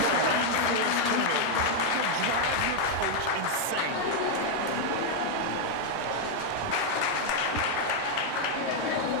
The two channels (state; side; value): different; both; correlation 0.00